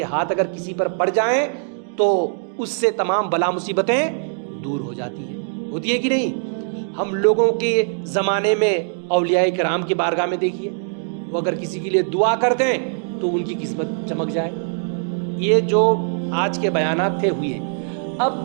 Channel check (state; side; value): silent; left; digital silence